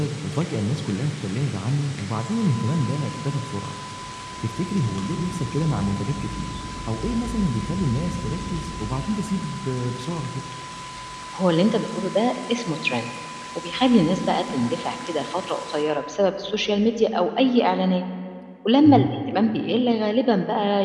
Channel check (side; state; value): both; identical; correlation 1.00